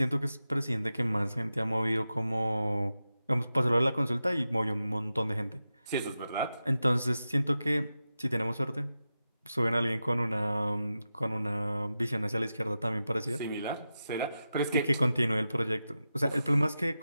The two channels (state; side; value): inverted; both; correlation -0.91